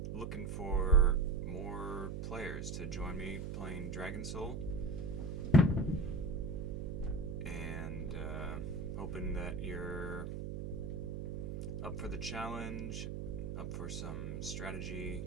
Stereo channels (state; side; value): noise; right; hum, 4 dB below the sound